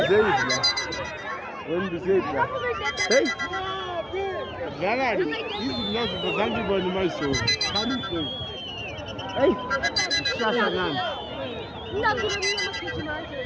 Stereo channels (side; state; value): both; identical; correlation 1.00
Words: say it, when you say it, hey. Gana, this is not for somebody my soul. Can you say? Hey, Sasa Gan.